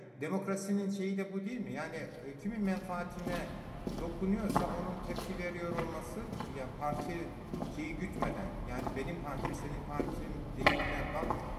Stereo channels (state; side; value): identical; both; correlation 1.00